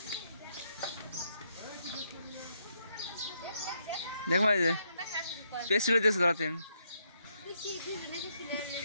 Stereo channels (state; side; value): inverted; both; correlation -0.77